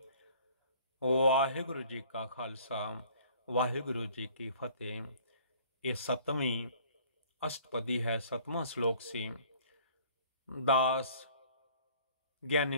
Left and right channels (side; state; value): both; inverted; correlation -0.53